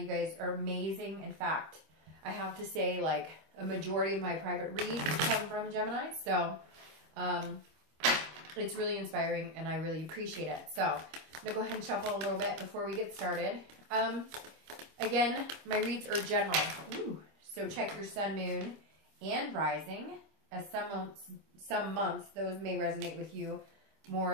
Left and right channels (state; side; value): late; left; 25 ms